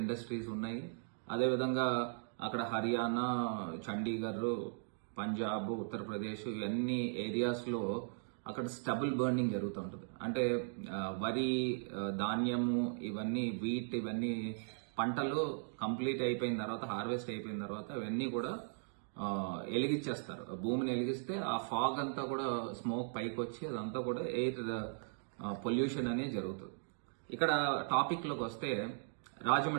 ఇండస్ట్రీస్ ఉన్నాయి. అదేవిధంగా అక్కడ హర్యానా, చండీగఢ్, పంజాబ్, ఉత్తరప్రదేశ్ ఇవన్నీ ఏరియాస్ లో అక్కడ స్టబుల్ బర్నింగ్ జరుగుతూ ఉంటుంది. అంటే వరి, ధాన్యము, ఇవన్నీ వీట్, ఇవన్నీ పంటలు కంప్లీట్ అయిపోయిన తర్వాత, హార్వెస్ట్ అయిపోయిన తర్వాత ఇవన్నీ కూడా ఎలిగించేస్తారు. భూమిని ఎలిగిస్తే ఆ ఫాగ్ అంతా కూడా స్మోక్ పైకి వచ్చి అదంతా కూడా ఎయిర్ పొల్యూషన్ అనేది జరుగుతుంది. ఇక్కడ టాపిక్ లోకి వస్తే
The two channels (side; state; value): left; silent; digital silence